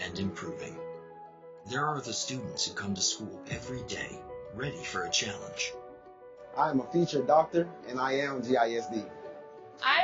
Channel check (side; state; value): both; identical; correlation 1.00